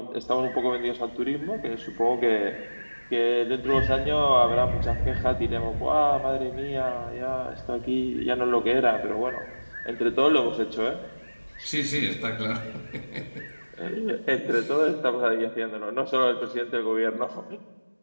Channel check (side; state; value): both; inverted; correlation -1.00